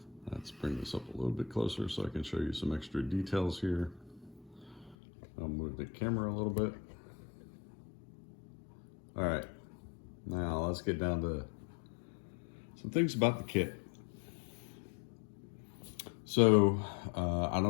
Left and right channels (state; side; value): drops out; right; at 5.0 s